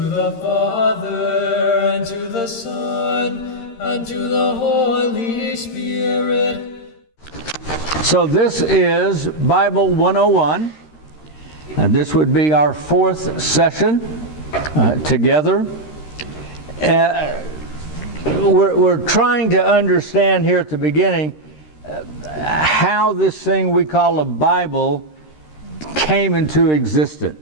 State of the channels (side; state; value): right; late; 13 ms